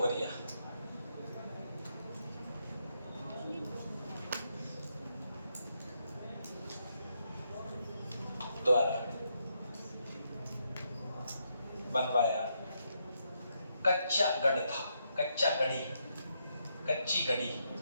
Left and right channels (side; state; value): both; inverted; correlation -0.79